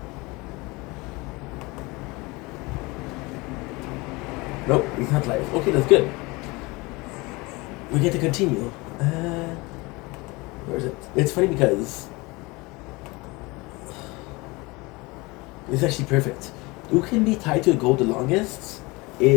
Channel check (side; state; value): right; quieter; 24.3 dB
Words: Nope, it's not live. Okay, that's good. We get to continue. Where is it? It's funny because it's actually perfect. Who can be tied to a goal the longest